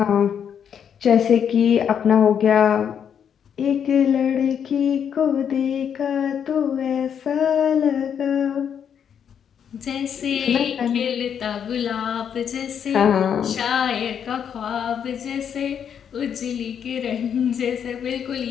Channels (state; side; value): quieter; right; 8.1 dB